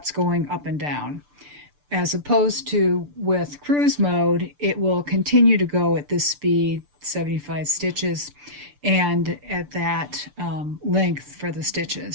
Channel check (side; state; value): left; late; 6.8 ms